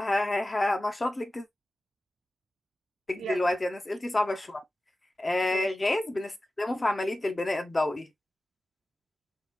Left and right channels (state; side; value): normal; both; correlation 0.95